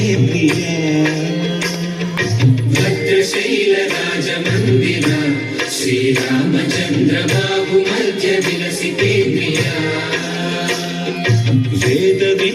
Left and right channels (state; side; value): identical; both; correlation 1.00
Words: प्रिया। भद्रशैलराजमन्दिर श्रीरामचन्द्र बाहु मध्य विलसिते प्रिया। वेद